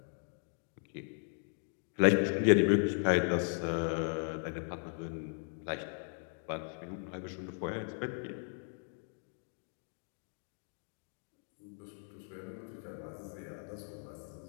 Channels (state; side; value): silent; right; 53 dB below the other